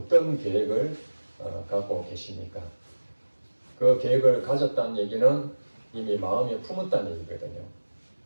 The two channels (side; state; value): both; inverted; correlation -1.00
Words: 계획을 갖고 계십니까? 그 계획을 가졌다는 얘기는 이미 마음에 품었다는 얘기거든요.